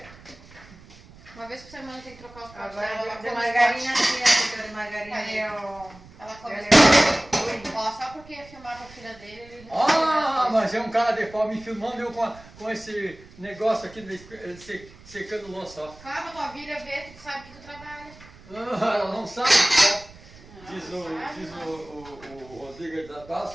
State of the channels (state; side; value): noise; right; rumble, 21 dB below the sound